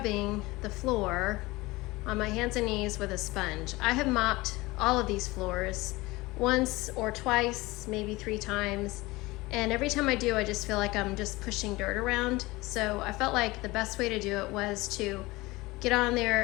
the floor on my hands and knees with a sponge. I have mopped all of these floors once or twice, maybe 3 times, and every time I do, I just feel like I'm just pushing dirt around. So I felt like the best way to do it was to get on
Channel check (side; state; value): right; quieter; 21.2 dB